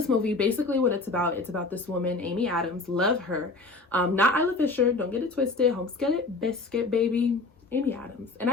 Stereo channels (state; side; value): quieter; right; 3.5 dB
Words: movie, basically what it's about this woman, Amy Adams. Love her. Not Isla Fisher, don't get it twisted. Homeskin biscuit baby, Amy Adams. And I